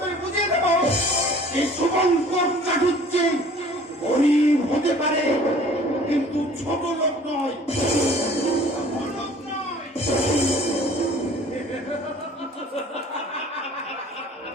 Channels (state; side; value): normal; both; correlation 0.50